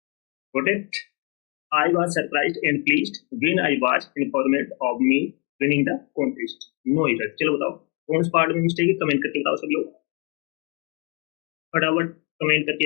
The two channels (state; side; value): quieter; right; 33.6 dB